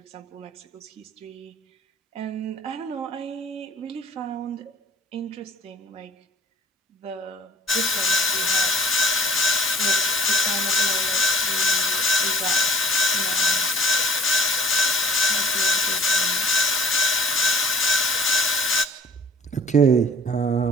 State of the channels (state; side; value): normal; both; correlation 0.51